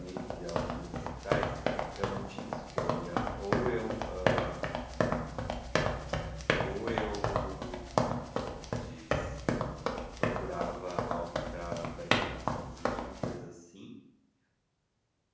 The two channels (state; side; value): identical; both; correlation 1.00